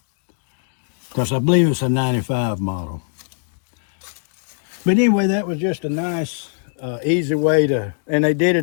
because I believe it's a 95 model. But anyway, that was just a nice, easy way to, and they did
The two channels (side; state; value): right; silent; 65 dB below the other